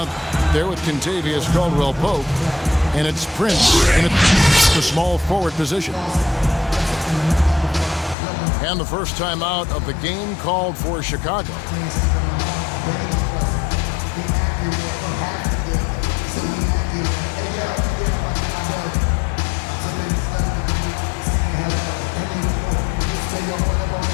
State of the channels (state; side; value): drops out; right; at 8.2 s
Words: there with Contavious Caldwell-Pope. And it's Prince in the small forward position. And the first time out of the game called for Chicago.